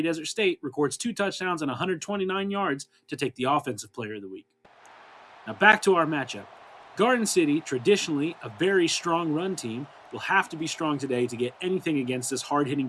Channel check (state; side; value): identical; both; correlation 1.00